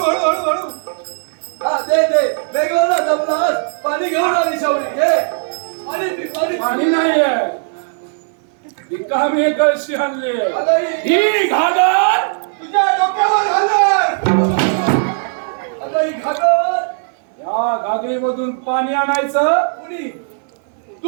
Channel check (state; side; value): silent; left; 60 dB below the other